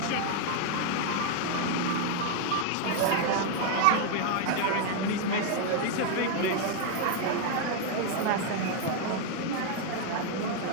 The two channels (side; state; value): both; different; correlation 0.00